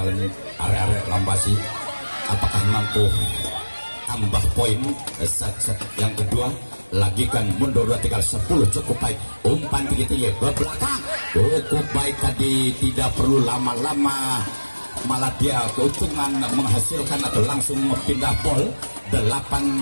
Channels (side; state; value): both; inverted; correlation -1.00